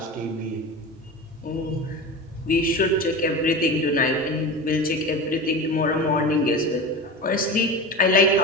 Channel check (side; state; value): both; normal; correlation 0.28